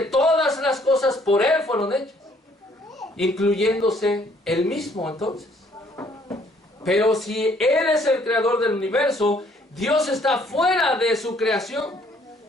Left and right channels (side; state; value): both; normal; correlation 0.63